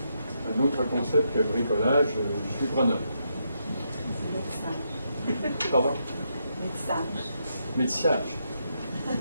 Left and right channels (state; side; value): inverted; both; correlation -0.80